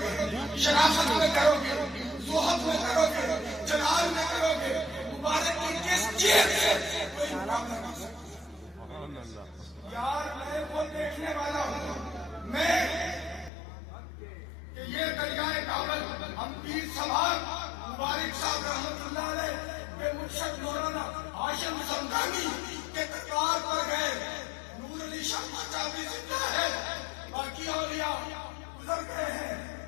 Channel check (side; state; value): right; drops out; at 13.5 s